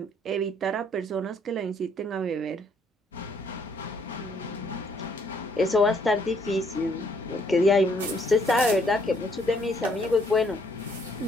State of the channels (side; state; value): both; normal; correlation 0.66